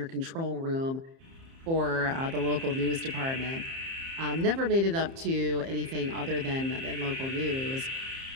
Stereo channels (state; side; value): late; left; 30 ms